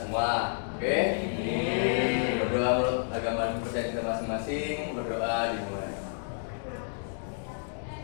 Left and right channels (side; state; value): right; silent; digital silence